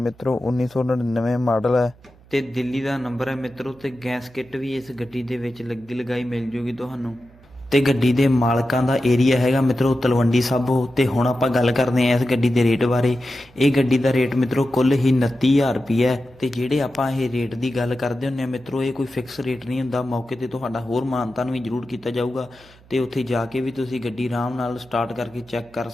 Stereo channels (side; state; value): right; noise; hum, 26 dB below the sound